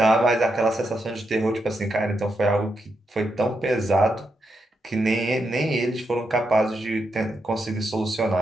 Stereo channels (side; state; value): both; normal; correlation 0.83